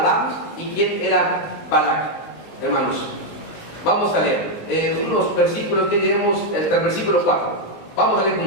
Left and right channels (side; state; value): right; late; 20 ms